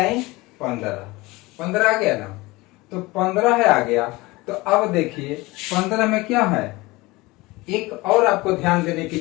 15, 15 आ गया ना। तो 15 है आ गया। तो अब देखिए 15 में क्या है, एक और आपको ध्यान देने की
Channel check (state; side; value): quieter; right; 21.8 dB